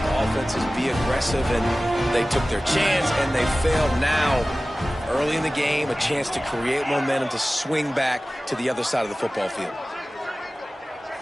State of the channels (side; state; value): both; normal; correlation 0.97